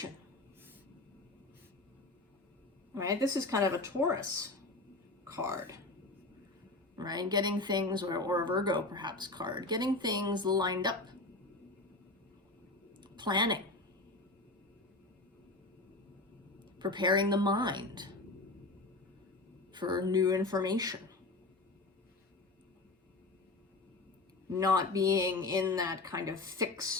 Right? This is kind of a Taurus card. Right? Getting things, or a Virgo perhaps card, getting things lined up. Planning. Preparing the mind for new information. Not being in that kind of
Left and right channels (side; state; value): right; quieter; 3.1 dB